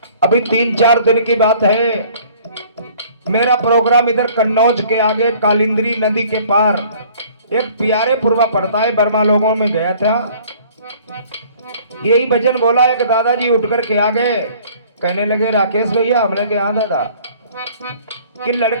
अभी 3-4 दिन की बात है, मेरा प्रोग्राम इधर कन्नौज के आगे कालिंद्री नदी के पार एक प्यारे पुरवा पड़ता है, बर्मा लोगों में गया था। यही भजन बोला एक दादाजी उठ कर के आ गए, कहने लगे राकेश भैया। हमने कहा हाँ दादा, कि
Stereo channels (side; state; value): both; inverted; correlation -0.53